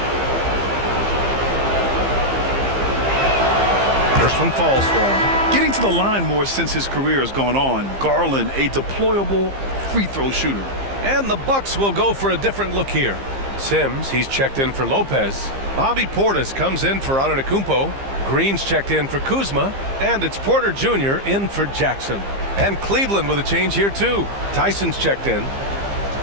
First one falls for him. Getting to the line more since his career has gone on. Garland, a deployable free throw shooter. And the Bucks will go for a different look here. Sims, he's checked in for Lopez. Bobby Portis comes in for Antetokounmpo. Green's checked in for Kuzma. And it's Porter Jr. in for Jackson. And Cleveland with a change here too. Tyson's checked in.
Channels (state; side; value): late; left; 15 ms